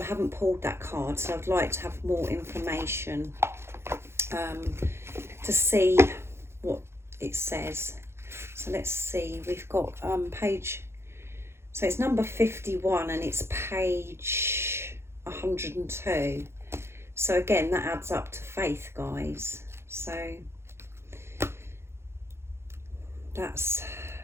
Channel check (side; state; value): left; late; 0.12 ms